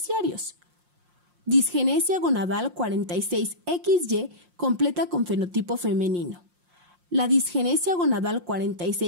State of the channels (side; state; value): left; late; 5.6 ms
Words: Disgenesia gonadal 46XY completa con fenotipo femenino. La disgenesia gonadal